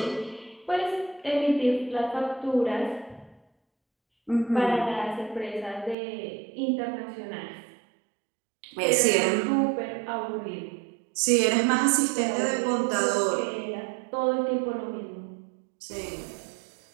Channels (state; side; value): drops out; left; at 6.0 s